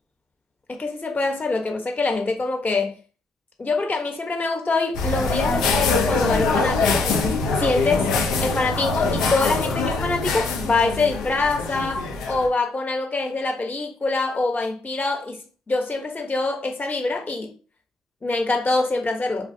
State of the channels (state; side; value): quieter; right; 3.1 dB